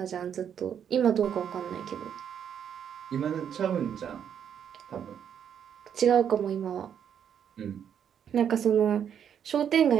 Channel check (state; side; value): quieter; left; 8.6 dB